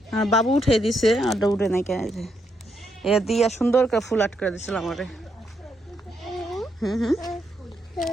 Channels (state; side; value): normal; both; correlation 0.79